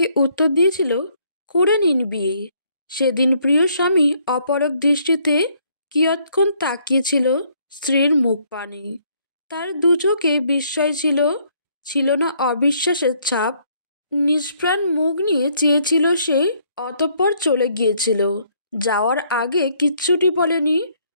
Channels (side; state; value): both; inverted; correlation -0.68